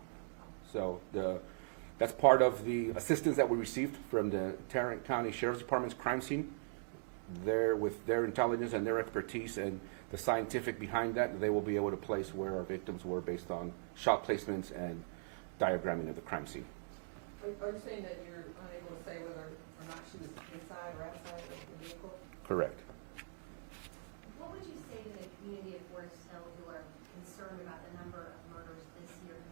So that's part of the assistance that we received from the Tarrant County Sheriff's Department's crime scene. There, with their intelligence and their expertise and the scientific behind that, they will be able to place where our victims were based on shot placements and diagramming of the crime scene. Are you saying that you're unable to say whether or not she was inside or outside of the vehicle? Correct. What would you say to the community of Forest Hill who are concerned about the number of murders this year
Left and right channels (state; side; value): silent; left; digital silence